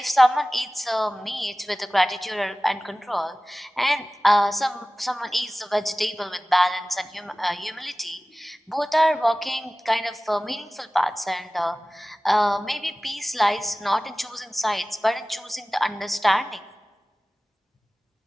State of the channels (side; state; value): both; normal; correlation 0.97